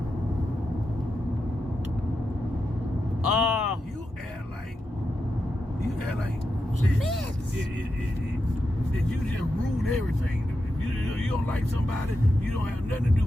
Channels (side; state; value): both; normal; correlation 0.87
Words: You act like that you just ruined everything. If you don't like somebody, you don't have nothing to do